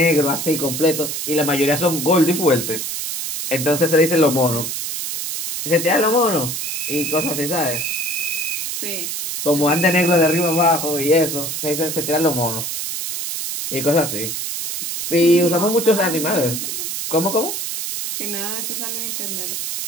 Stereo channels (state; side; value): noise; right; hiss, 4 dB below the sound